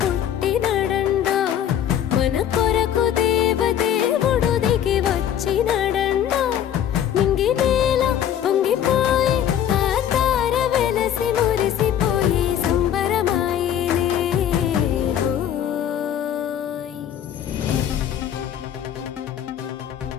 పుట్టినాడండోయ్ మన కొరకు దేవదేవుడు దిగి వచ్చినాడండోయ్ నింగి నేల పొంగిపోయి ఆ తార వెలసి మురిసిపోయి సంబరమాయనే హోయ్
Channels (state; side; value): quieter; right; 10.0 dB